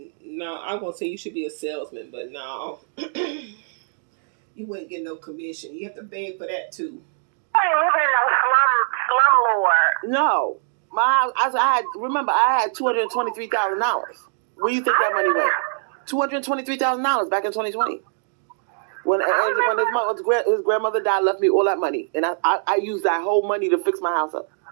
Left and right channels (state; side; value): silent; left; digital silence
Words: no, I'm going to say you should be a salesman, but no. You wouldn't get no commission. You have to beg for that too. You ain't living in no slum lord. No. I had $223,000. Where you think that money went? $223,000 back in 2020. When his grandmother died, left me all that money. And I used that whole money to fix my house up.